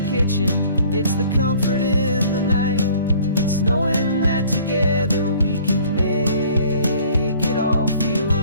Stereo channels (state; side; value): inverted; both; correlation -0.54